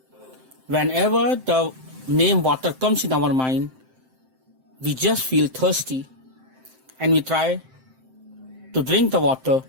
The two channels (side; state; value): left; late; 7.7 ms